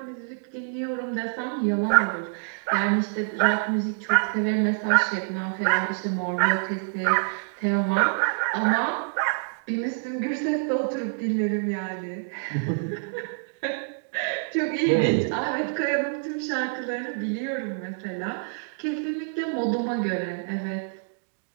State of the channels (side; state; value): left; silent; digital silence